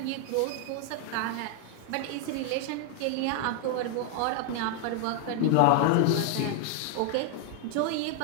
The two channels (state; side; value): different; both; correlation 0.00